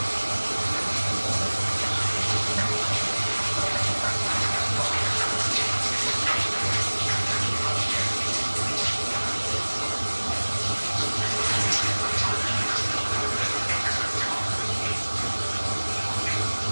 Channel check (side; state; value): both; inverted; correlation -1.00